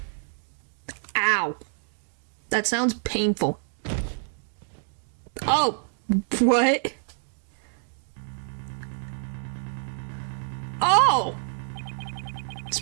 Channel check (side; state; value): left; silent; digital silence